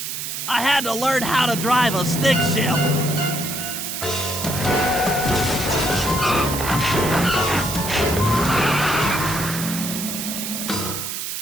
I had to learn how to drive a stick shift.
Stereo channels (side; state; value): right; noise; hiss, 5 dB below the sound